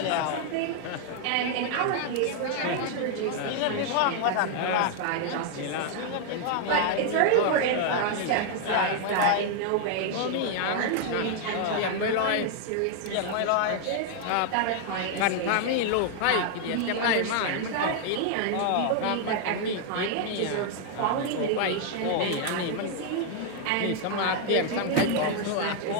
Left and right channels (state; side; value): different; both; correlation 0.00